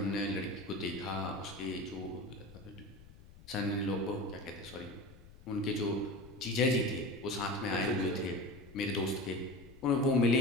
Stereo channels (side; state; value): left; noise; rumble, 21 dB below the sound